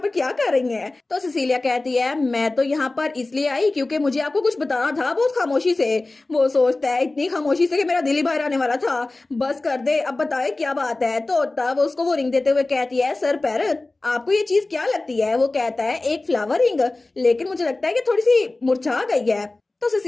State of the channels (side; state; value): right; quieter; 3.1 dB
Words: क्या कर रही हैं? तो सिसिलिया कहती है मैं तो यहाँ पर इसलिए आई क्योंकि मुझे आपको कुछ बताना था बहुत खामोशी से। वो सोचता है इतनी खामोशी से कि मेरा दिल ही बाहर आने वाला था, बस कर दे अब बताए क्या बात है। तो तब उसको वो रिंग देते हुए कहती है सर पैरल आपको ये चीज क्या लगती है? वो कहता है एक फ्लावर रिंग, लेकिन मुझे लगता है कि थोड़ी सी मुरझा गई है। तो